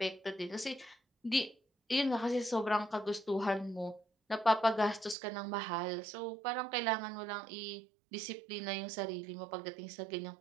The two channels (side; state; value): left; drops out; at 5.2 s